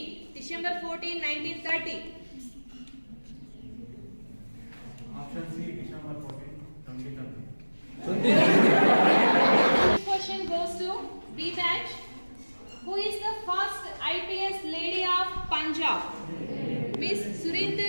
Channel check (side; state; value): both; inverted; correlation -1.00